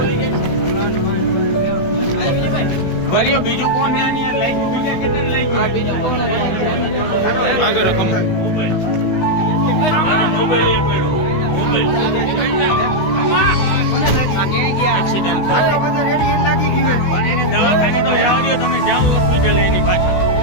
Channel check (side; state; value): right; late; 16 ms